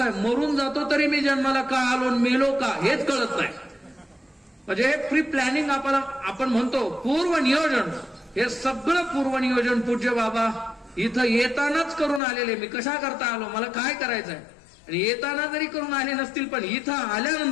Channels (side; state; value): right; drops out; at 12.2 s